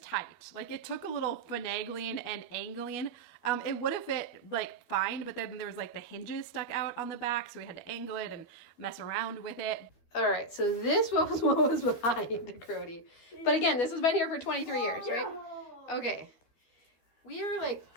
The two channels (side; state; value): right; late; 13 ms